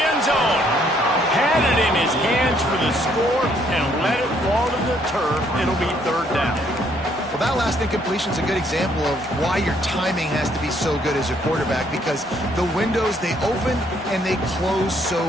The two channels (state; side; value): normal; both; correlation 0.67